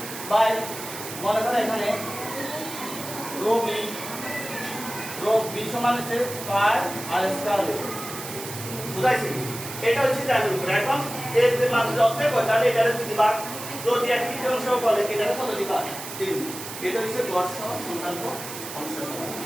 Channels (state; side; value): noise; right; hiss, 10 dB below the sound